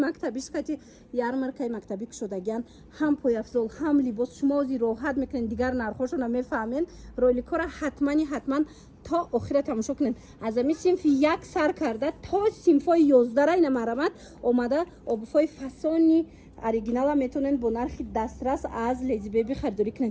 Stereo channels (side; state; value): both; identical; correlation 1.00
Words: кати ярмаркаи мактабӣ кушодагиан, ҳам пояфзол, ҳам либос. шумо озир роҳат мекунен, дигар нархошона мефаҳмен. роликҳоро ҳатман то охира тамошо кунен. аз ами синфи 1 сар карда то синфои 11 ина марамат омада обуфои фасони оригинала метонен бо нархи дастрас аз Lady Baby харидорӣ